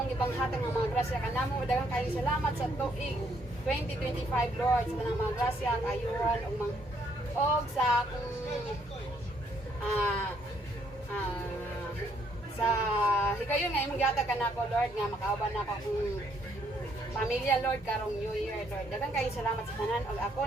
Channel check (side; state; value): both; normal; correlation 0.70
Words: ipanghatag ng mga grasya kanamo. Daghang kayong salamat sa tuig 2025, Lord, sa tanang mga grasya, kayuhan og sa akong sa higayon nga imong gihatag kanako, Lord, nga makauban nako akong pamilya, Lord, karong New Year, Lord. Daghang kayong salamat sa tanan og